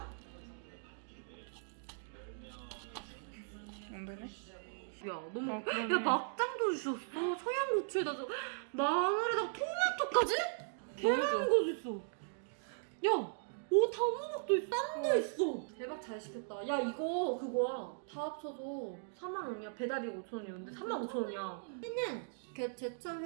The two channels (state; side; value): silent; left; digital silence